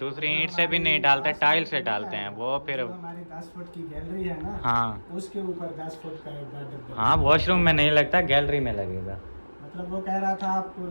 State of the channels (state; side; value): inverted; both; correlation -1.00